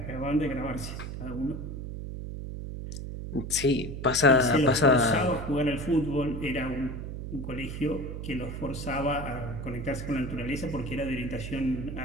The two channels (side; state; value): right; noise; hum, 7 dB below the sound